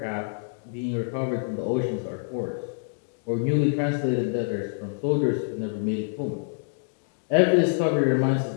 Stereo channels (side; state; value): right; silent; digital silence